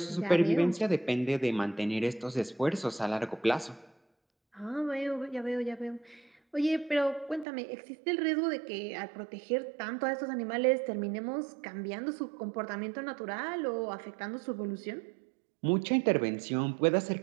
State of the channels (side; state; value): left; drops out; at 7.5 s